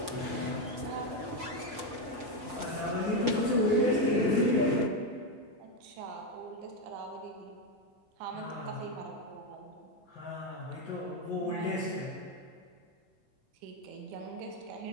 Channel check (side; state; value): left; late; 5.2 ms